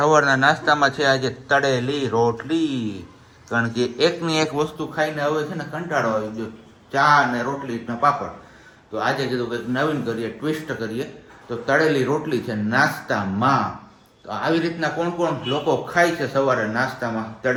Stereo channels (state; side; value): identical; both; correlation 1.00